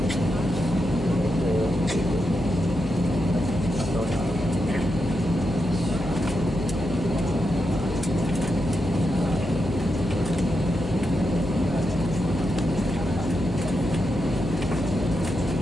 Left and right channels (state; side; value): noise; left; hum, 9 dB below the sound